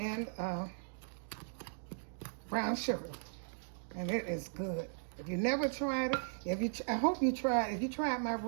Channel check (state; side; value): silent; left; digital silence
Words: brown sugar. And it is good. If you never tried it, I hope you tried. If you tried my